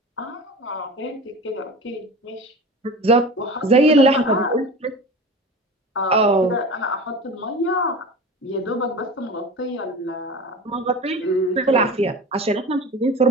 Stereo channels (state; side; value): normal; both; correlation 0.34